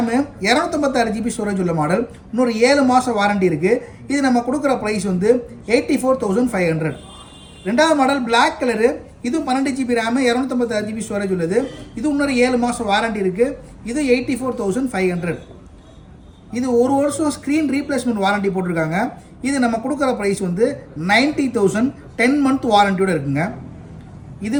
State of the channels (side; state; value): both; identical; correlation 1.00